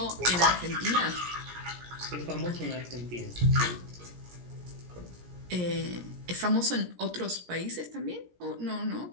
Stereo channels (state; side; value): late; left; 17 ms